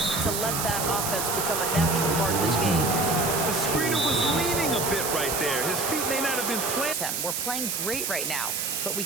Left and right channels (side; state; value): right; noise; hiss, 1 dB below the sound